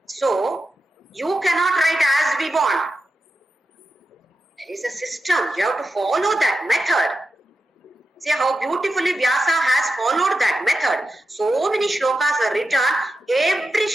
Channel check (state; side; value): normal; both; correlation 0.90